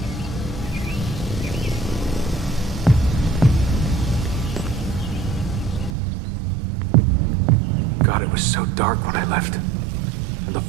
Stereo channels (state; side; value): drops out; left; at 6.0 s